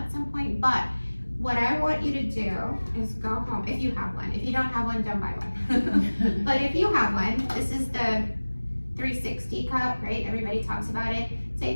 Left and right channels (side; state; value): both; inverted; correlation -1.00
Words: some point, but what I want you to do is go home, if you have one. If you don't have one, don't buy one. But if you have one, this is the 360 cup, right? Everybody talks about it.